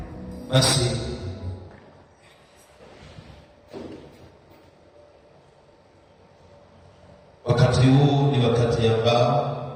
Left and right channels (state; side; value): identical; both; correlation 1.00